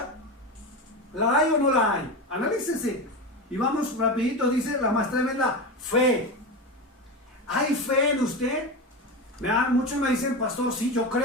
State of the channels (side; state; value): both; normal; correlation 0.20